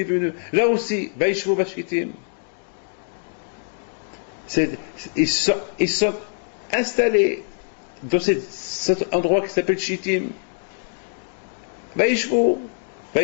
venu, là aussi, Vaishvu Bashitim. Ils sont installés dans cet endroit qui s'appelle Shittim. Vaishvu,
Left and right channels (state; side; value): silent; right; digital silence